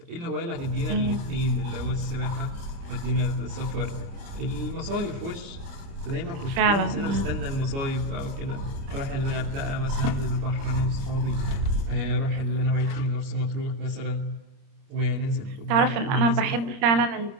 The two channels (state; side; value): late; left; 30 ms